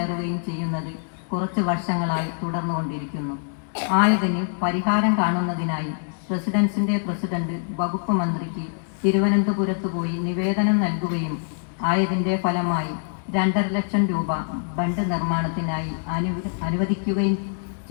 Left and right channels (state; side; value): silent; right; digital silence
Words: ചെയ്യുന്നത് കുറച്ച് വർഷങ്ങളായി തുടർന്നുകൊണ്ടിരിക്കുന്നു. ആയതിന് പരിഹാരം കാണുന്നതിനായി റെസിഡൻസിൻ്റെ പ്രസിഡന്റ് വകുപ്പ് മന്ത്രിക്ക് തിരുവനന്തപുരത്ത് പോയി നിവേദനം നൽകുകയും ആയതിൻ്റെ ഫലമായി 2.5 ലക്ഷം രൂപ ബണ്ട് നിർമ്മാണത്തിനായി അനുവദിക്കുകയും